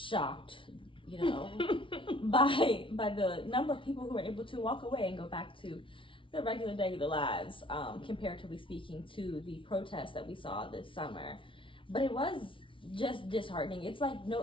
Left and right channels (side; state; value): right; late; 0.25 ms